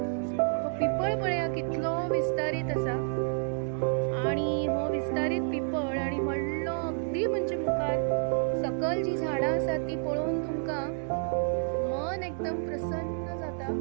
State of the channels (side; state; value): left; silent; digital silence